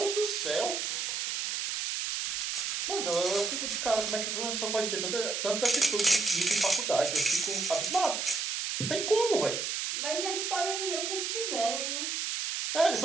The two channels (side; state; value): right; noise; hiss, 1 dB below the sound